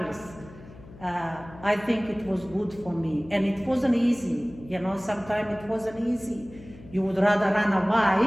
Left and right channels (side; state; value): left; noise; hum, 19 dB below the sound